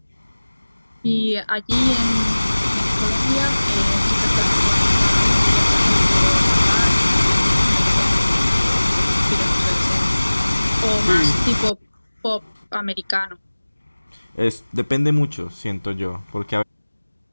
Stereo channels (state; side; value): inverted; both; correlation -1.00